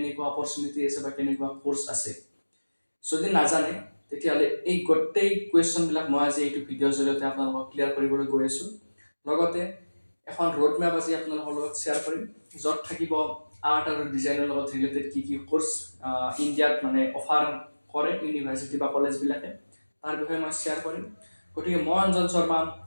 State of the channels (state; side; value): inverted; both; correlation -1.00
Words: অপৰচুনিটি আছে বা কেনেকুৱা কোৰ্চ আছে? যদি নাজানে তেতিয়াহ'লে এই গোটেই কুৱেশ্যনবিলাক মই আজি এইটো ভিডিঅ'ৰ জৰিয়তে আপোনালোকক ক্লিয়াৰ কৰিবলৈ গৈ আছোঁ। লগতে এখন ৰোড মেপ আজি আপোনালোকৰ লগত শ্বেয়াৰ কৰিম, য'ত থাকিব আৰ্ট আৰু ডিজাইনৰ লগত ৰিলেটেড কি কোৰ্চ ইণ্ডিয়াত অফাৰ কৰে ইউনিভাৰ্চিটি বা কলেজবিলাকে, তাৰ বিষয়ে মই শ্বেয়াৰ কৰিম। গতিকে মই অঞ্জন শৰ্মা,